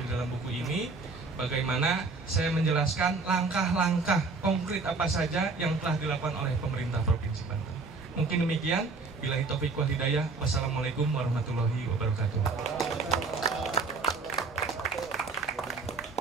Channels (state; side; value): quieter; left; 4.0 dB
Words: dalam buku ini, bagaimana saya menjelaskan langkah-langkah konkret apa saja yang telah dilakukan oleh pemerintah Provinsi Banten. Mungkin demikian, billahi taufiq wal hidayah. Wassalamualaikum warahmatullahi wabarakatuh.